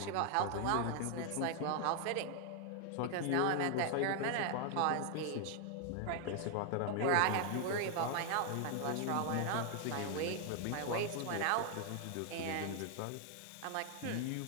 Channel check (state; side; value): different; both; correlation 0.00